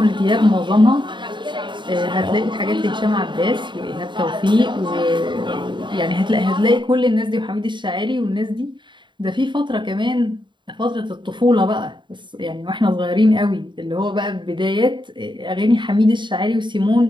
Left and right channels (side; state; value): left; late; 0.23 ms